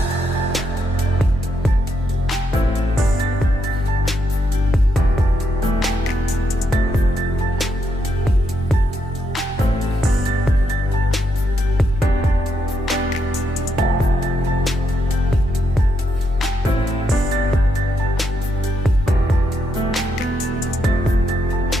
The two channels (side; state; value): both; normal; correlation 0.79